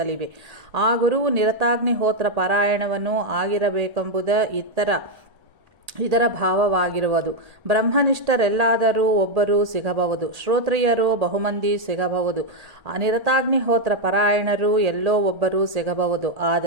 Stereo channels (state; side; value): late; left; 1.8 ms